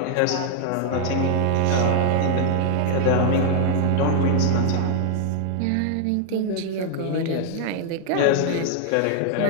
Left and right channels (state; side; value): different; both; correlation 0.00